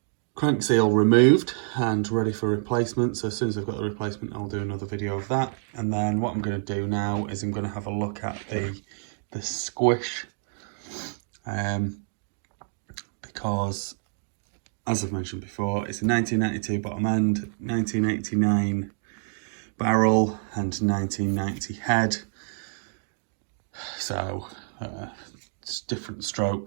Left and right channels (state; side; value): silent; left; 60 dB below the other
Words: crank seal removed and ready for replacement. So as soon as I've got the replacement, I'll do another video of that. And then what I'm going to do now is I'm going to have a look at the squish, because as I've mentioned before, it's a 1992 bottom end, 1989 barrel and 1990 head. So it's different